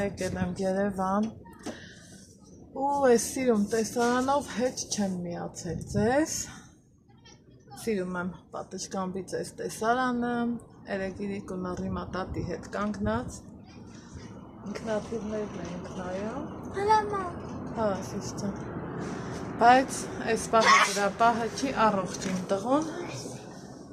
եկել եմ Երևան ու այս սիրում տեսարանով հետ չեմ միացել ձեզ։ Սիրում եմ պատշգամբից այս տեսարանը, երեգիրիկ ու նռիմա տատի հետ կանգնած։ Ինքնաթիռներն ենք նայում։ Հա, սիշ ջան։ Բայց այս պահը գրապահը չի առողջ իմ տղուն։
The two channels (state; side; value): identical; both; correlation 1.00